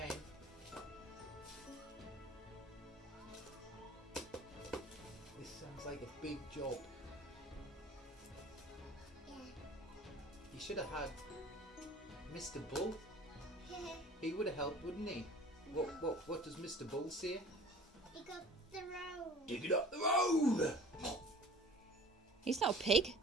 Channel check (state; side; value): normal; both; correlation 0.45